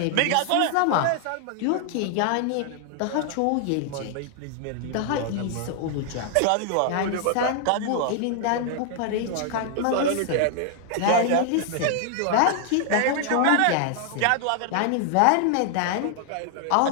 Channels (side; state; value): both; different; correlation 0.00